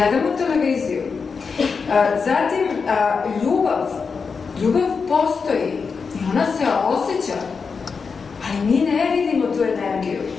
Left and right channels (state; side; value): quieter; right; 5.3 dB